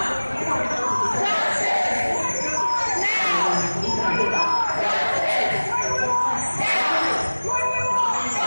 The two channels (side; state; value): both; inverted; correlation -1.00